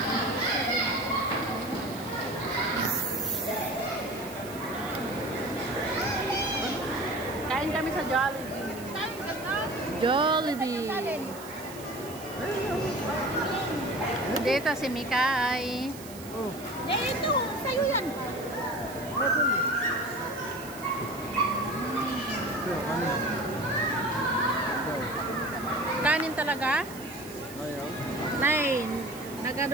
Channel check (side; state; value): right; noise; hiss, 16 dB below the sound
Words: Kain kami sa Jollibee. Jollibee. Dito si Mikay. Oh. Ito, sa'yo yan. Kanin talaga? Ayaw. Nay,